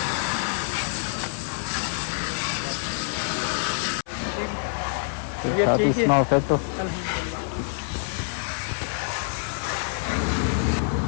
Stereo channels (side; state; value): right; silent; 61 dB below the other